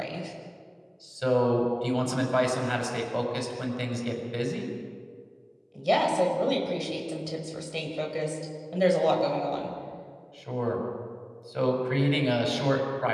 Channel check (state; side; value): identical; both; correlation 1.00